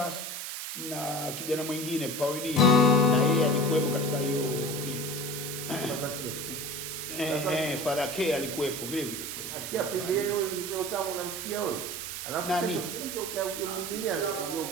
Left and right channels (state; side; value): noise; right; hiss, 6 dB below the sound